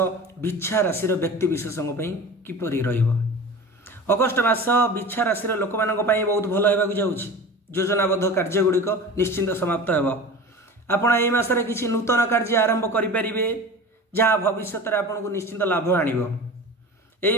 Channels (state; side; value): normal; both; correlation 0.35